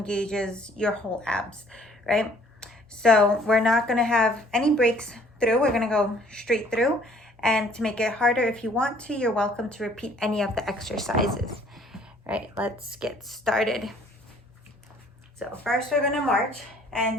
your whole abs, right? So we're not going to have any breaks through. We're going to go straight through. And to make it harder, if you want to, you're welcome to repeat any of the exercises. All right, let's get started. So first we're going to march.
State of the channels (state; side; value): normal; both; correlation 0.58